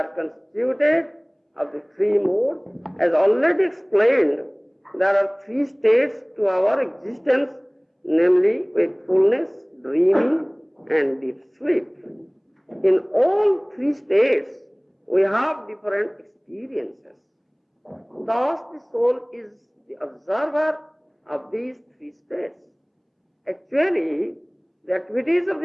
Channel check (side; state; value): both; identical; correlation 1.00